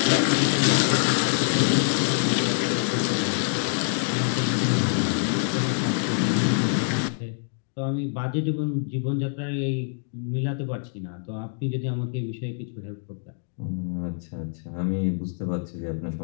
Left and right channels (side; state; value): right; silent; digital silence